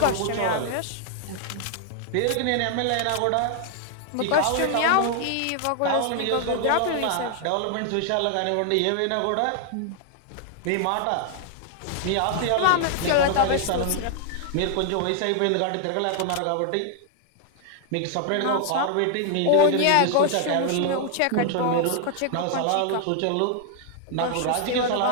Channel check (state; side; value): different; both; correlation 0.00